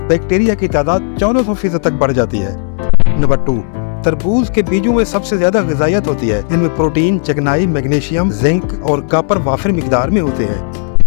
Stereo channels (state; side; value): silent; right; 66 dB below the other